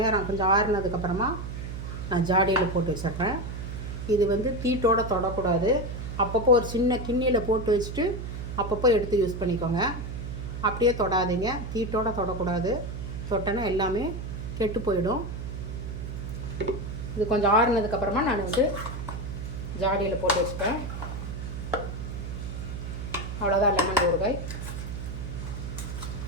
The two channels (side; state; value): right; noise; hum, 6 dB below the sound